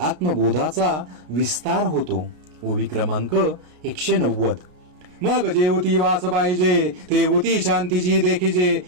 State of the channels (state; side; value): late; left; 33 ms